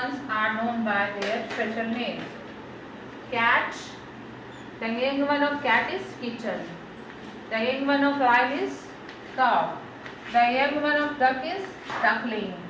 are known by their special names. Cat. The young one of cat is kitten. The young one of owl is cow. The young one of duck is duckling.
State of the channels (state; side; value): identical; both; correlation 1.00